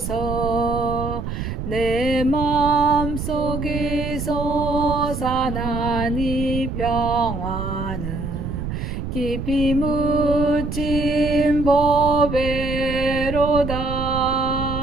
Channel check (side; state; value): right; noise; rumble, 5 dB below the sound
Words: 내 맘속에 솟아난 이 평화는 깊이 묻힌 보배로다.